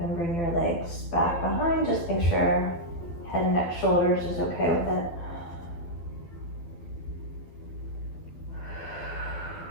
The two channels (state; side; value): late; right; 12 ms